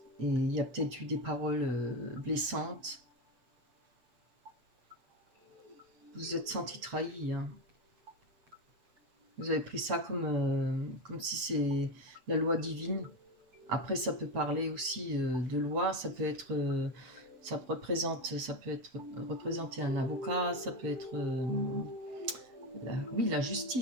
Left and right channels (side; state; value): left; late; 8.1 ms